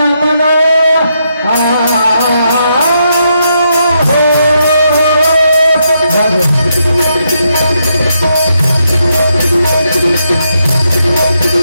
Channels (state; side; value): inverted; both; correlation -0.80